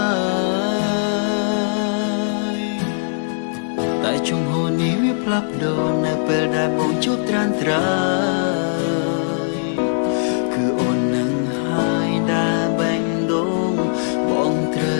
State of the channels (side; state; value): right; silent; 66 dB below the other